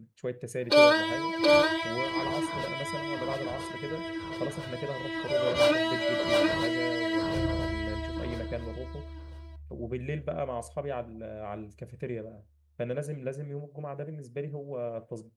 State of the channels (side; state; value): both; identical; correlation 1.00